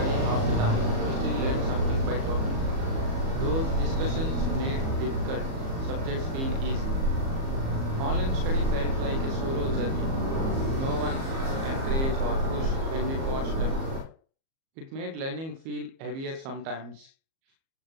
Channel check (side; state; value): left; late; 37 ms